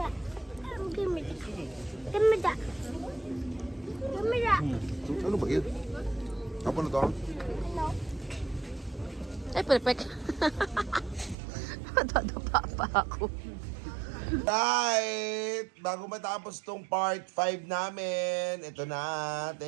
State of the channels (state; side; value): drops out; left; at 11.4 s